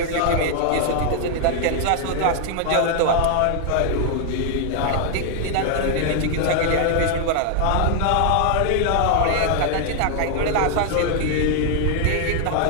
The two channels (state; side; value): different; both; correlation 0.00